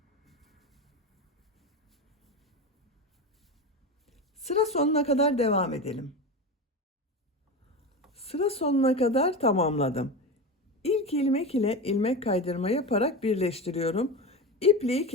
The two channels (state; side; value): normal; both; correlation 0.22